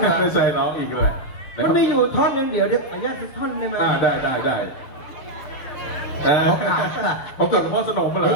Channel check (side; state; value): right; late; 7.0 ms